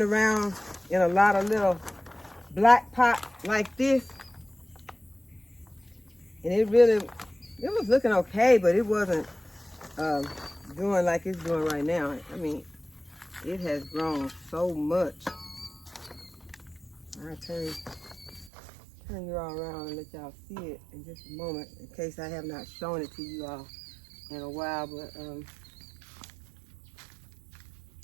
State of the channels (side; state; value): left; drops out; at 18.5 s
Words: around in a lot of little black pots like this, and it was looking okay, but it wasn't doing like it's doing right now. I mean, it has grown so much. I'll turn you all around and let y'all see it in just a moment, in case I have not shown it to you all in a while. But